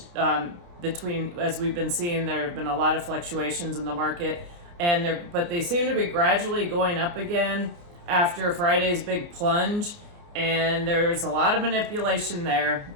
between, as we've been seeing, there have been a lot of fluctuations in the market. But they seem to be gradually going up again after Friday's big plunge, and there's a lot of manipulation there.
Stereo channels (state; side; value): late; left; 29 ms